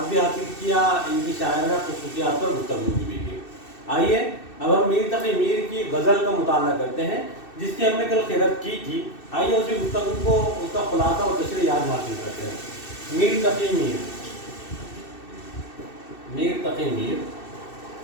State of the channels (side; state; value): right; late; 2.6 ms